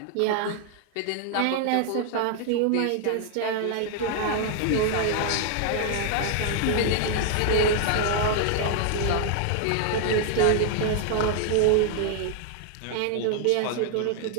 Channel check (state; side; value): different; both; correlation 0.00